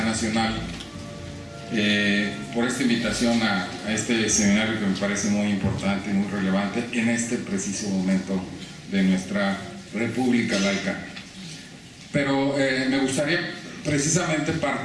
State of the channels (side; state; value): both; identical; correlation 1.00